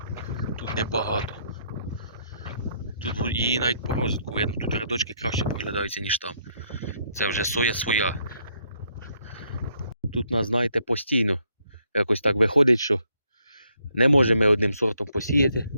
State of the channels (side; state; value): both; inverted; correlation -0.72